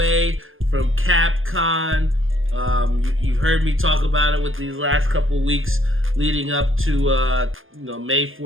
from CapCon. You've heard me talk about it with these last couple weeks leading up to May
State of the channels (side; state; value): left; late; 0.59 ms